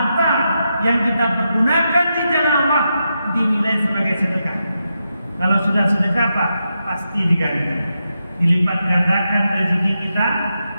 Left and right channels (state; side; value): inverted; both; correlation -0.86